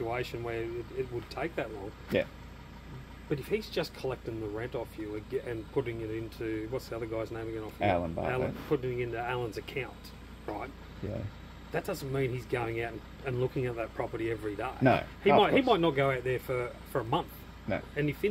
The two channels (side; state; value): both; identical; correlation 1.00